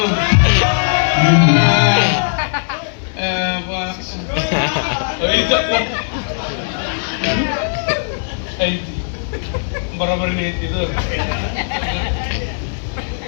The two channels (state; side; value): silent; right; digital silence